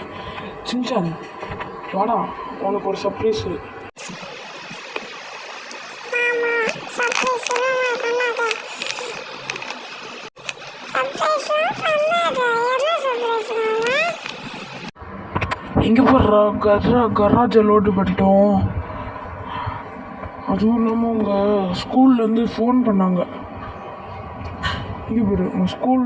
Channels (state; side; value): identical; both; correlation 1.00